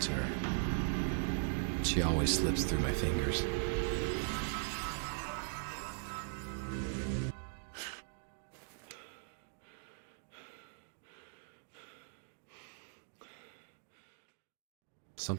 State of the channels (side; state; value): left; silent; digital silence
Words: to her. She always slips through my fingers.